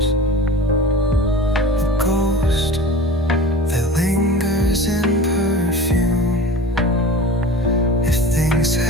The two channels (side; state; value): both; normal; correlation 0.37